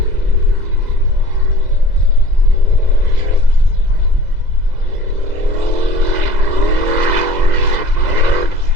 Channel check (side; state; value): left; late; 2.0 ms